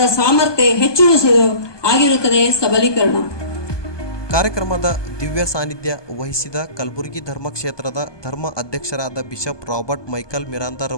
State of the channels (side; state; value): right; late; 1.2 ms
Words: ಸಾಮರ್ಥ್ಯ ಹೆಚ್ಚಿಸುವುದು ಆಗಿರುತ್ತದೆ ಸಬಲೀಕರಣ. ಕಾರ್ಯಕ್ರಮದ ದಿವ್ಯ ಸಾನ್ನಿಧ್ಯ ವಹಿಸಿದ ಕಲಬುರಗಿ ಧರ್ಮಕ್ಷೇತ್ರದ ಧರ್ಮ ಅಧ್ಯಕ್ಷರಾದ ಬಿಷಪ್ ರಾಬರ್ಟ್ ಮೈಕಲ್